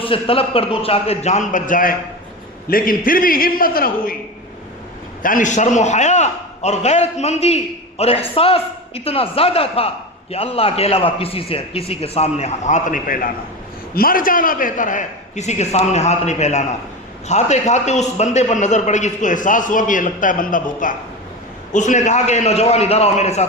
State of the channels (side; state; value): both; normal; correlation 0.24